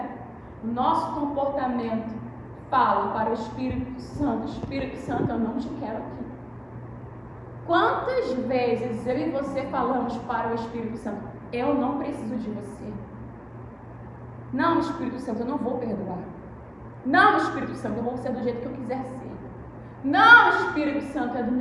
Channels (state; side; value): identical; both; correlation 1.00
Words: O nosso comportamento fala para o Espírito Santo: Espírito Santo, eu não te quero aqui. Quantas vezes eu e você falamos para o Espírito Santo: eu não preciso de você. Não, Espírito Santo, eu não vou perdoar. Não, Espírito Santo, eu vou ser do jeito que eu quiser ser. Não, Espírito Santo, é do